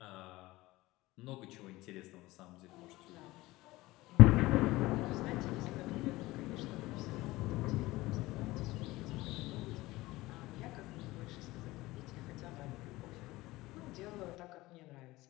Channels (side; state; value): right; quieter; 19.2 dB